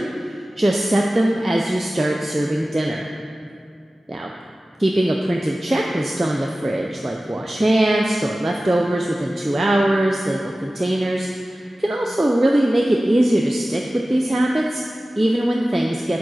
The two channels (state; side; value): normal; both; correlation 0.96